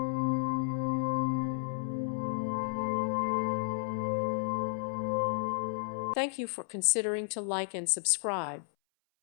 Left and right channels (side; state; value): right; silent; 56 dB below the other